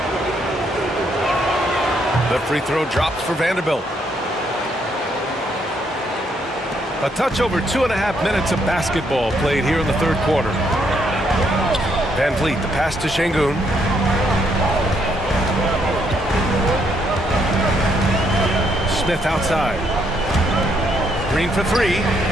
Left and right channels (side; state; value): both; normal; correlation 0.73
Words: The free throw drops for Vanderbilt. A touch over 2.5 minutes of basketball played here in the third quarter. VanVleet, the pass to Şengün. Smith outside. Green for 3.